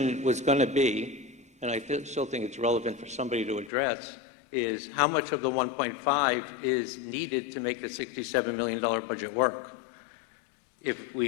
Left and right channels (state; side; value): drops out; right; at 3.7 s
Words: was going to be, and I still think it's relevant for somebody to address, is how much of the 1.5 is needed to make the $67 million budget work? If